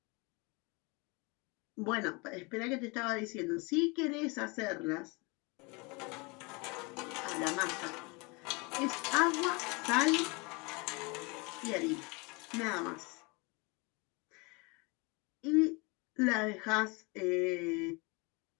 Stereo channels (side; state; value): right; quieter; 28.5 dB